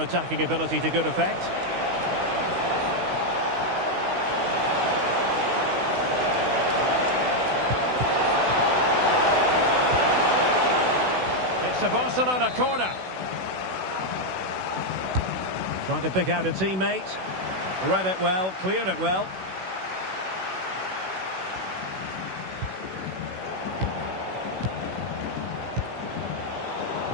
ability to good effect. It's a Barcelona corner. Trying to pick out a teammate. Read it well, cleared it well.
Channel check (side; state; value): left; late; 16 ms